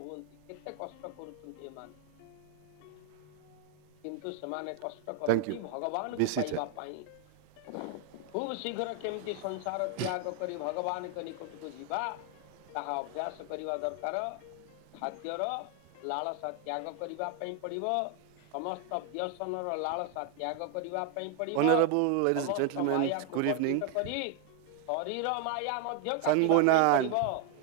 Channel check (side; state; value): both; different; correlation 0.01